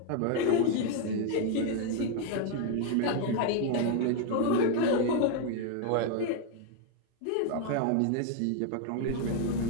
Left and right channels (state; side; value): different; both; correlation 0.00